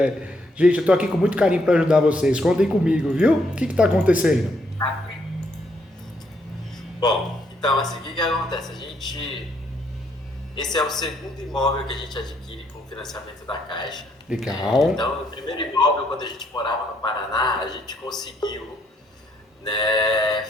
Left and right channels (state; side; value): normal; both; correlation 0.72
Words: Gente, eu tô aqui com muito carinho para ajudar vocês. Contem comigo, viu? O que tá acontecendo? Bom, então assim, o que acontece? Esse é o segundo imóvel que a gente adquire com o financiamento da Caixa. Legal. Então, o primeiro imóvel, quando a gente morava no Paraná, a gente conseguiu, né,